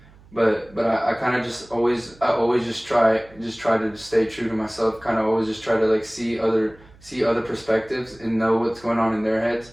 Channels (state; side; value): noise; right; hum, 25 dB below the sound